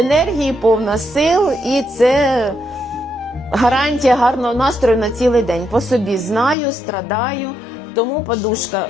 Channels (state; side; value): drops out; right; at 6.6 s